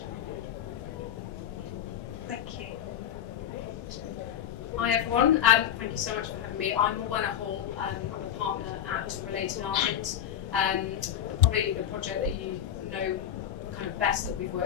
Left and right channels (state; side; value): quieter; right; 10.2 dB